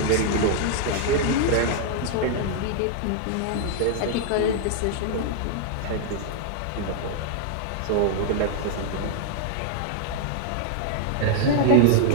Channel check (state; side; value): different; both; correlation -0.01